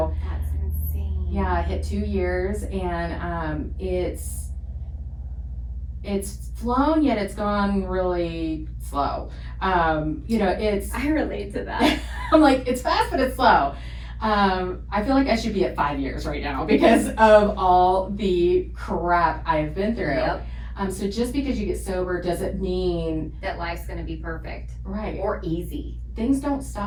That's insane. yeah, I hit 2 years, and it's flown, yet it's gone really slow. You know, it's I relate to that. I'm like, it's fast, but it's slow. I feel like I should be at 5 years right now because of all the crap I have been through. Yep. So just because you get sober doesn't mean That life's gonna be perfect right. or easy. Things don't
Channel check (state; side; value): identical; both; correlation 1.00